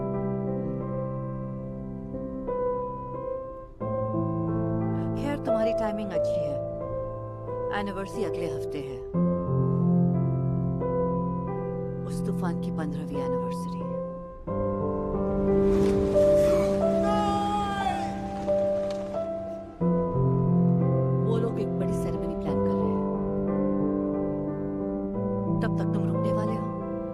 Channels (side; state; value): both; identical; correlation 1.00